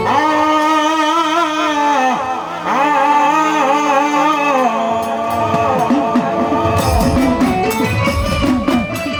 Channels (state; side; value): identical; both; correlation 1.00